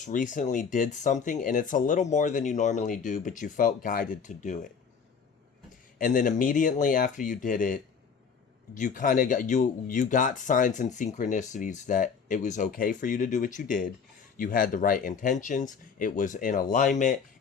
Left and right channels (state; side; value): quieter; right; 6.1 dB